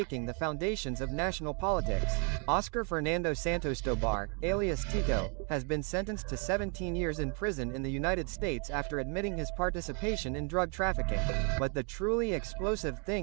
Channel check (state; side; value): quieter; left; 37.6 dB